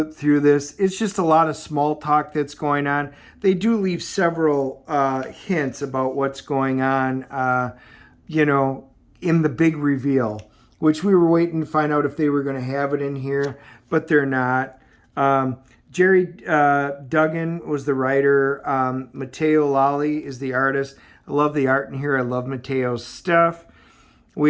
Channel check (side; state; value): both; identical; correlation 1.00